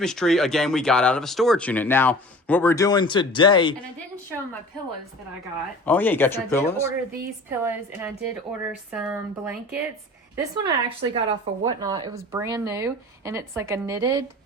tree, again, we got out of a storage unit. Now, what we're doing today... And I didn't show them my pillows that I got. Oh, yeah, you got your pillows? I did order these pillows, and I did order some blankets. This one I actually got off of Whatnot. It was brand new, and it's like a knitted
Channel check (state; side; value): normal; both; correlation 0.42